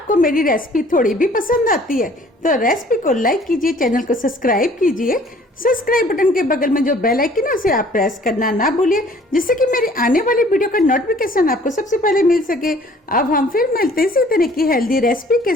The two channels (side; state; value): both; normal; correlation 0.55